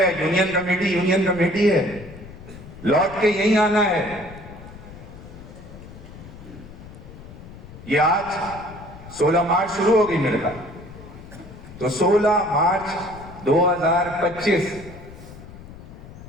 یونین کمیٹی ہے، لوٹ کے یہیں آنا ہے۔ یہ آج 16 مارچ شروع ہوگی میرے خیال، تو 16 مارچ 2025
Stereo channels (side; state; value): left; noise; rumble, 16 dB below the sound